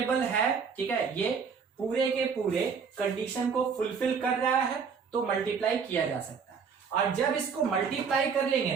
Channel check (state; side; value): quieter; left; 6.1 dB